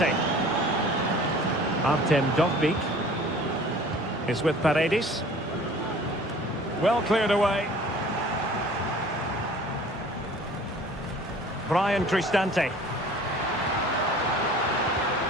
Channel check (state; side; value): normal; both; correlation 0.47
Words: Artem Dovbyk is with Paredes. Well cleared away. Brian Cristante.